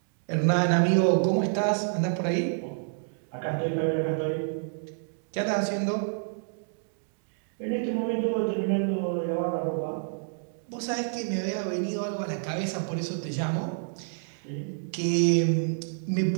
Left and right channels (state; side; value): silent; left; digital silence